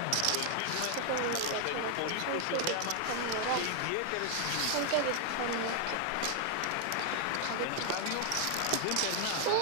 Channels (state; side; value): different; both; correlation 0.00